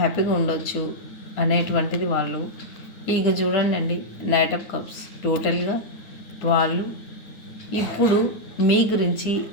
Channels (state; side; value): late; right; 9.3 ms